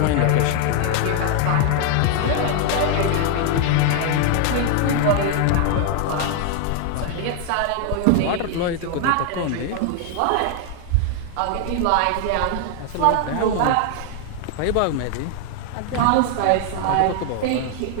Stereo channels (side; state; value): both; different; correlation 0.00